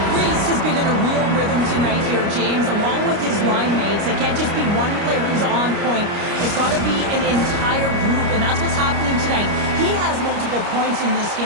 Reese has been in a real rhythm tonight here, James, along with his line mates. It can't just be one player who's on point. It's got to be an entire group, and that's what's happening tonight. He has multiple points in this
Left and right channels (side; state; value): left; late; 29 ms